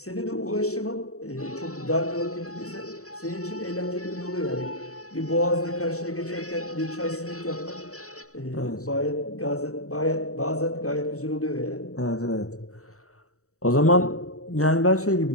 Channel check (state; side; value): late; right; 0.65 ms